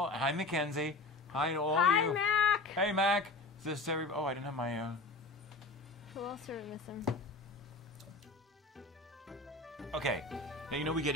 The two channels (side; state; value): right; quieter; 3.1 dB